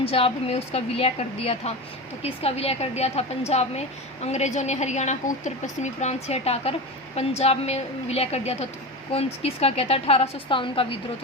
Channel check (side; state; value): both; normal; correlation 0.25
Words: में उसका विलय कर दिया था, तो किसका विलय कर दिया था, पंजाब में अंग्रेजों ने हरियाणा को उत्तर पश्चिमी प्रांत से हटाकर पंजाब में विलय कर दिया था, तो किसका क्या था, 1857 का विद्रोह,